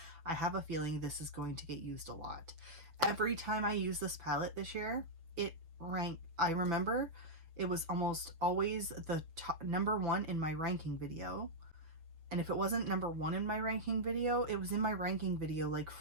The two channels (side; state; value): left; late; 6.2 ms